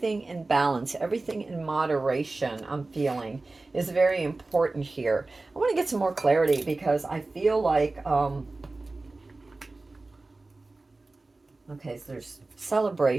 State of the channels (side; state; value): left; quieter; 3.3 dB